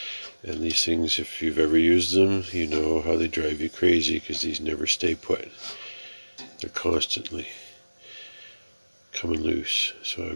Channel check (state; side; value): inverted; both; correlation -1.00